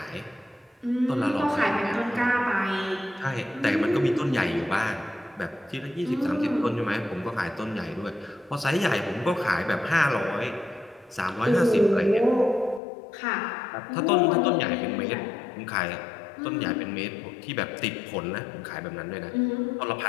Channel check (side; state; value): right; drops out; at 12.8 s